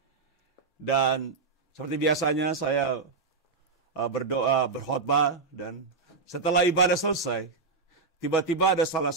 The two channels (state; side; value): quieter; left; 4.5 dB